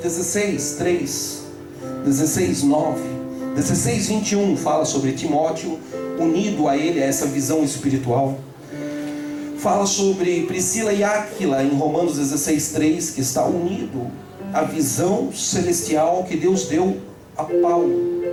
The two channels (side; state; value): both; identical; correlation 1.00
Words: 16:3, 16:9, 16:21 fala sobre Timóteo unido a ele, a essa visão espiritual. Fala sobre Priscila e Áquila em Romanos 16:3, que está unido à visão celestial que Deus deu a Paulo.